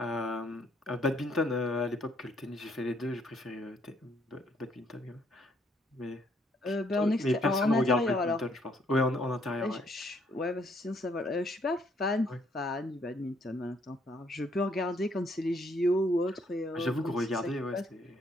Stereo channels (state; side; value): normal; both; correlation 0.68